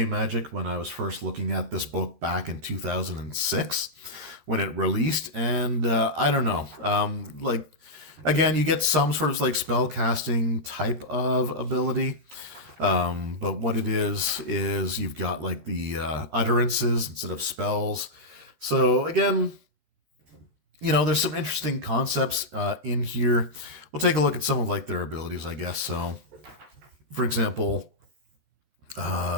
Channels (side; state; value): left; late; 13 ms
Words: Magic when I was first looking at this book back in 2006 when it released, and I don't know. Like again, you get some sort of like spell casting type of ability. But what it is you've got like the utterances instead of spells. So again, there's some interesting concepts in here. We'll take a look at some of like their abilities, I guess. So, for example,